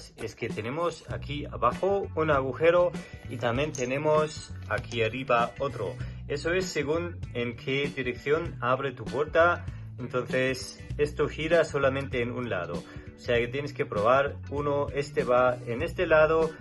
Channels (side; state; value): both; identical; correlation 1.00